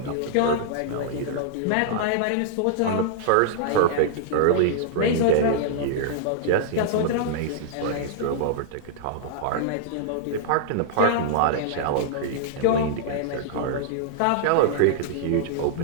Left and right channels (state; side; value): different; both; correlation -0.02